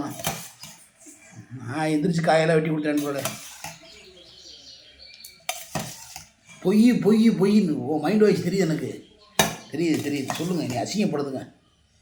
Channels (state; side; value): identical; both; correlation 1.00